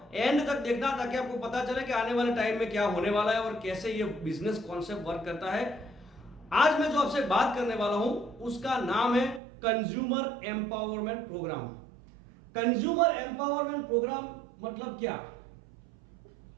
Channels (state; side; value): drops out; left; at 9.4 s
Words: एंड तक देखना ताकि आपको पता चले कि आने वाले टाइम में क्या होने वाला है और कैसे ये बिजनेस कॉन्सेप्ट वर्क करता है। आज मैं जो आपसे बात करने वाला हूं उसका नाम है consumer empowerment programme. Consumer empowerment programme मतलब क्या?